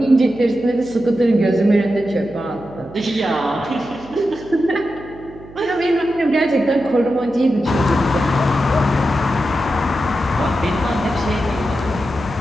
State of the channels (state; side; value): noise; right; hum, 19 dB below the sound